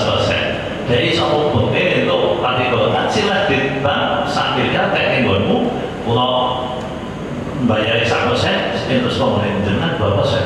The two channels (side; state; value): both; identical; correlation 1.00